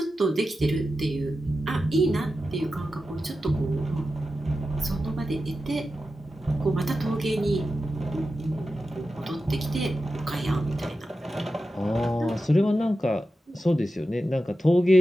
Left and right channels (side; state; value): both; normal; correlation 0.91